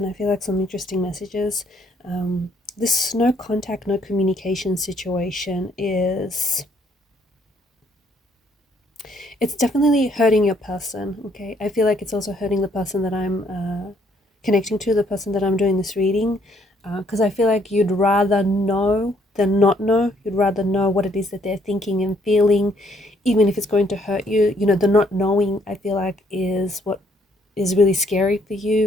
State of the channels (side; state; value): both; normal; correlation 0.67